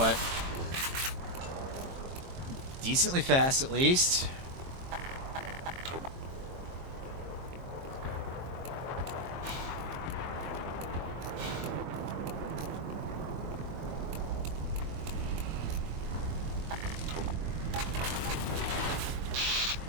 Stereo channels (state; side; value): late; left; 22 ms